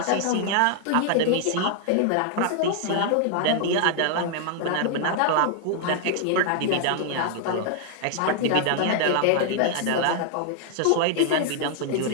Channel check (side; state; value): both; different; correlation 0.00